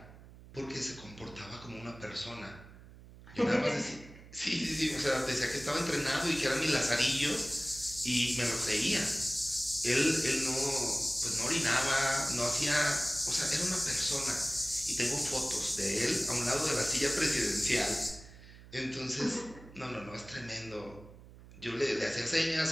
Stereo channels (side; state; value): right; noise; hum, 19 dB below the sound